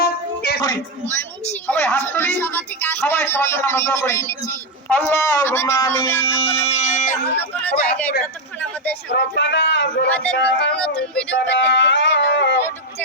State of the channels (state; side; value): normal; both; correlation 0.04